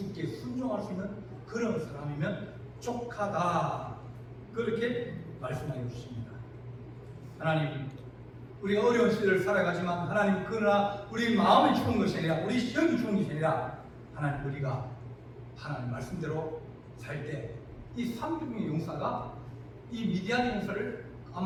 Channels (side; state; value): both; identical; correlation 1.00